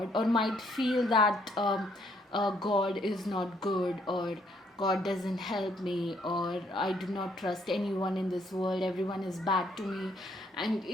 or might feel that God is not good, or God doesn't help me, or I do not trust anyone in this world, everyone is bad to me. And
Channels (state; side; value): normal; both; correlation 0.69